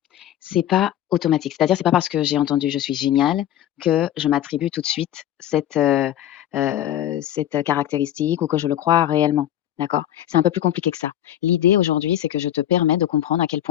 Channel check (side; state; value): right; quieter; 11.8 dB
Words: c'est pas automatique. C'est-à-dire, c'est pas parce que j'ai entendu «je suis génial» que je m'attribue tout de suite cette caractéristique ou que je le crois réellement, d'accord? C'est un peu plus compliqué que ça. L'idée aujourd'hui, c'est que je te permets de comprendre à quel